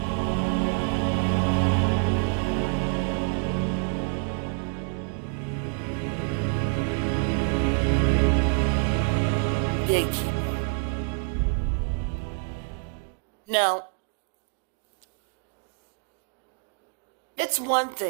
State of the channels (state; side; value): quieter; left; 38.8 dB